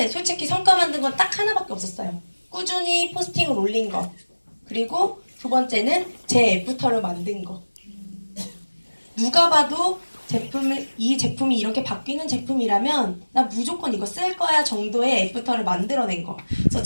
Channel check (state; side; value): inverted; both; correlation -1.00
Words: 솔직히 성과 만든 건 딱 하나밖에 없었어요. 꾸준히 포스팅을 올린 거. 그리고 두 번째는 제 애프터를 만든 거. 누가 봐도 이 제품이 이렇게 바뀌는 제품이라면 나 무조건 이거 쓸 거야 정도의 애프터를 만들어낸 거. 그래서